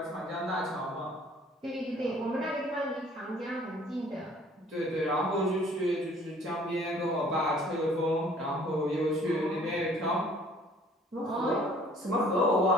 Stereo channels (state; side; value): normal; both; correlation 0.55